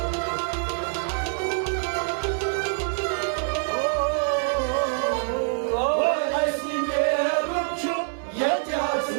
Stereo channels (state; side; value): silent; left; 61 dB below the other